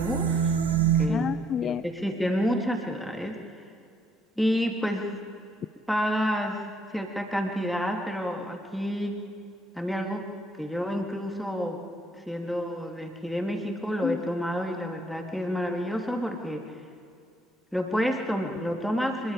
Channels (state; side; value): normal; both; correlation 0.69